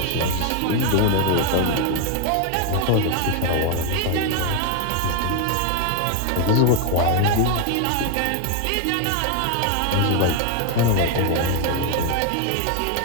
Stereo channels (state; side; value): different; both; correlation 0.01